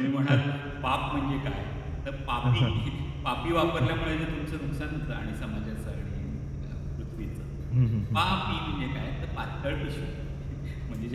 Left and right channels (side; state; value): both; identical; correlation 1.00